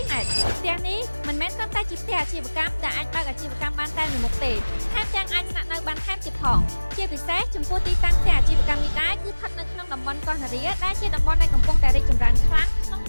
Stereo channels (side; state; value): both; inverted; correlation -1.00